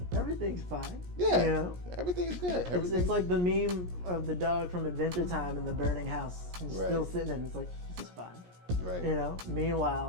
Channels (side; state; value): left; late; 17 ms